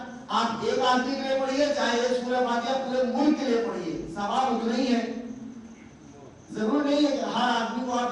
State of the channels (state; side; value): identical; both; correlation 1.00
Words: آپ ایک آدمی کے لیے پڑھیے، چاہے ایک سورہ فاتحہ پورے ملک کے لیے پڑھیے، ثواب اتنا ہی ہے. ضرور نہیں ہے کہ ہر آدمی کو